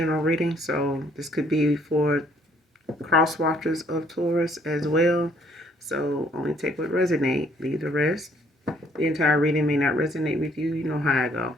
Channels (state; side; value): normal; both; correlation 0.64